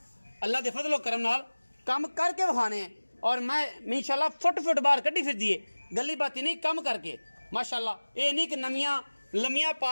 अल्लाह दे फजलो करम नाल कम करके विखाने हैं और मैं इंशाल्लाह फुट फुट बाहर कड्डी फिरदी है। गली बाती नहीं कम करके माशाल्लाह। ये नहीं कि नमियां लमियां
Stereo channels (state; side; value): inverted; both; correlation -1.00